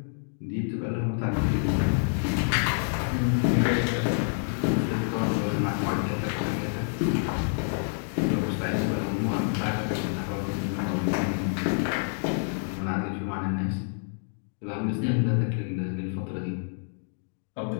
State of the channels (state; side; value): silent; right; digital silence